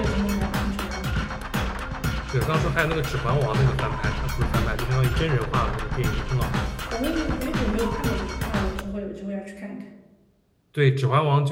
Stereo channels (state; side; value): identical; both; correlation 1.00